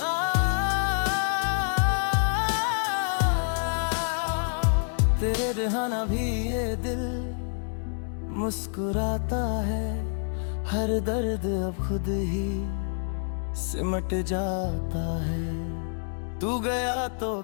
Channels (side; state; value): right; silent; digital silence